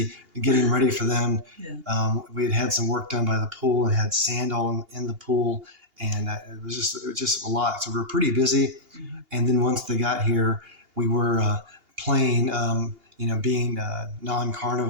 getting ready for them. Yeah. We had some work done by the pool and had sand all in the pool, and it was just a lot. So we were pretty busy. Mm-hmm. And then once they got here, we were playing. Being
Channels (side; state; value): left; late; 2.8 ms